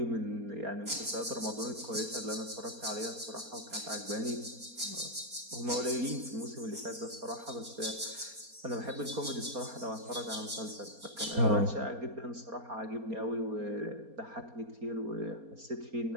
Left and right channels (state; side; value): late; left; 4.3 ms